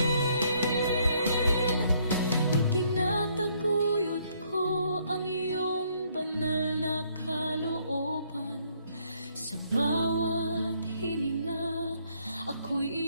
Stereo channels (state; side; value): inverted; both; correlation -0.68